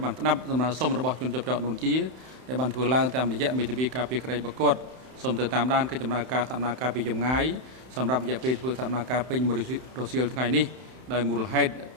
បានស្ដាប់សំណើសុំរបស់ជនជាប់ចោតនួនជាដែលបានធ្វើឡើងតាមរយៈមេធាវីការពីក្តីប្រកប សូមទៅតាមដានកិច្ចដំណើរការសកម្មភាពពីចម្ងាយសម្រាប់រយៈពេលធ្វើសកម្មភាពពេញមួយរសៀលថ្ងៃនេះដោយមូលហេតុ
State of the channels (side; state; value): left; late; 31 ms